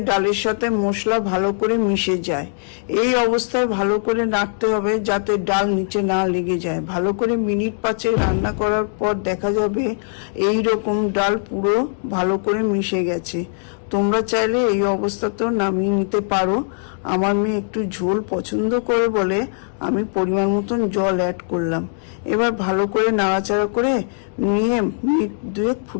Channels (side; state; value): right; silent; digital silence